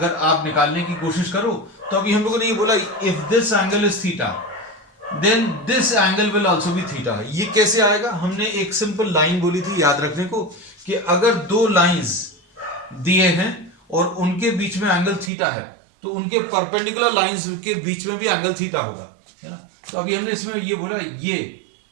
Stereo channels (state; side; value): drops out; left; at 15.3 s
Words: आप निकालने की कोशिश करो तो अभी हम लोगों ने ये बोला if this angle is theta then this angle will also be theta. ये कैसे आएगा, हमने एक सिंपल लाइन बोली थी याद रखने को कि अगर दो लाइंस दिए हैं और उनके बीच में एंगल थीटा है तो उनके परपेंडिकुलर लाइंस के बीच में भी एंगल थीटा होगा, है ना. तो अभी हमने इसमें ये बोला ये